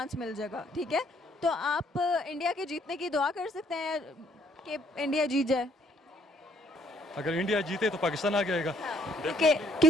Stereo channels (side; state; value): both; normal; correlation 0.66